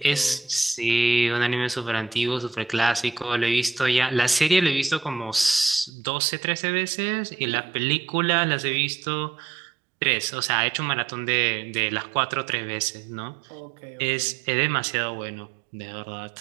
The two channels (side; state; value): left; drops out; at 5.9 s